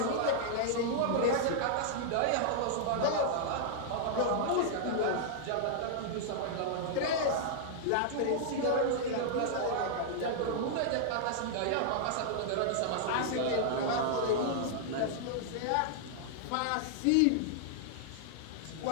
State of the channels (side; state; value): both; different; correlation -0.01